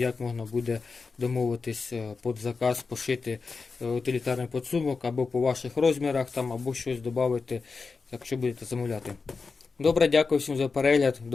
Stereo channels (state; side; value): quieter; right; 4.6 dB